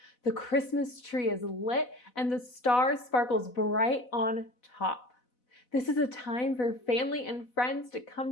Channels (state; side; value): late; right; 4.0 ms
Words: The Christmas tree is lit and the star sparkles bright on top. This is a time for family and friends to come